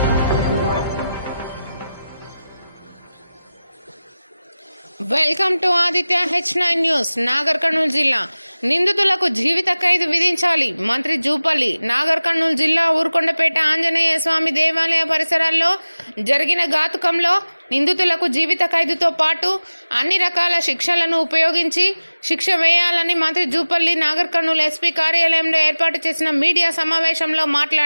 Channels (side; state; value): both; inverted; correlation -0.97